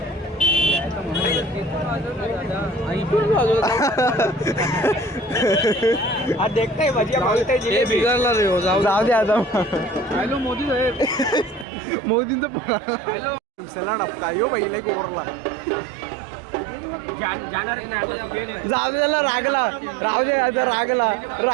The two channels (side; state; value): left; drops out; at 11.7 s